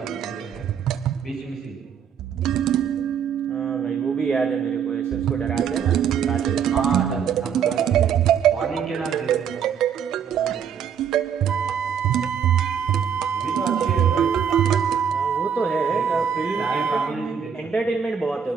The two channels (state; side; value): quieter; left; 7.7 dB